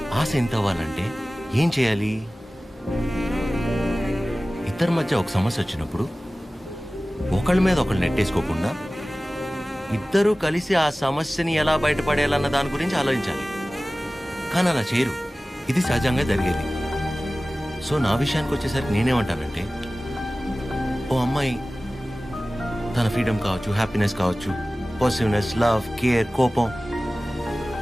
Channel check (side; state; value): both; normal; correlation 0.97